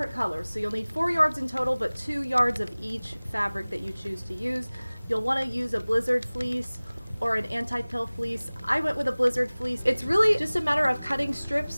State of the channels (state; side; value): inverted; both; correlation -1.00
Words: colors, so you'll need 4 yards in total, but 2 yards of each fabric that you choose to use. You'll want to use a blizzard fleece or an anti-pill fleece. I went with a blizzard fleece. It's really just a matter of cutting